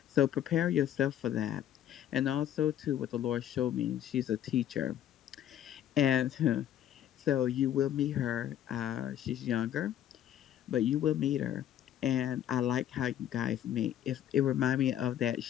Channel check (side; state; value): right; quieter; 11.0 dB